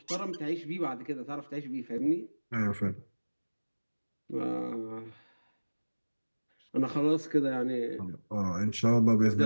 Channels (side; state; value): both; inverted; correlation -1.00